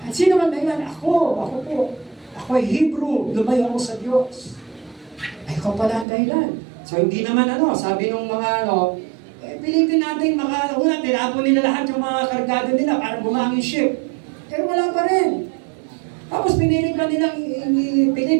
Sino man dahilan? Ako po. Ako ay Hebrew. Lumayo ako sa Diyos. Ay, ikaw pala ang dahilan. So, hindi naman sabi nung mga pilitin natin una, tinapon nila lahat yung mga kargado nila para bumangin ship. Pero wala pa rin. Tapos pinilit pa nilang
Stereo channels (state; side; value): drops out; left; at 6.1 s